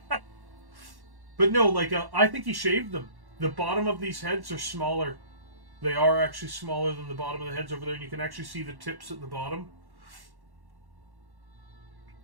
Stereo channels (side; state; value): left; late; 1.1 ms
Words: But no, I think he shaved them. The bottom of these heads are smaller. They are actually smaller than the bottom of the heads over there, and you can actually see the tips at the bottom.